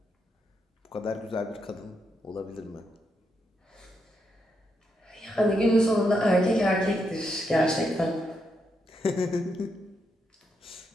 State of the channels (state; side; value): normal; both; correlation 0.81